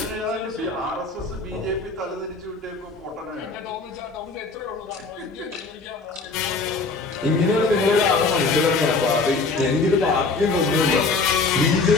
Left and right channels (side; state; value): right; quieter; 3.9 dB